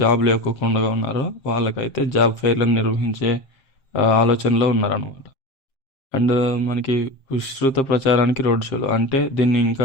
జాబ్ లేకోకుండా ఉన్నారో వాళ్ళకైతే జాబ్ ఫెయిర్లను నిర్వహించే ఆలోచనలో ఉన్నారనమాట. అండ్ మనకి విస్తృత ప్రచారానికి రోడ్ షోలు అంటే దీన్ని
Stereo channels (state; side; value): late; right; 7.5 ms